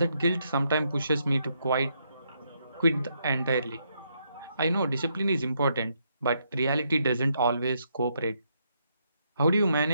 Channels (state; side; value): inverted; both; correlation -0.77